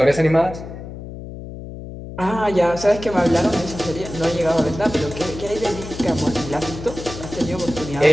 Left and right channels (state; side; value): noise; left; hum, 11 dB below the sound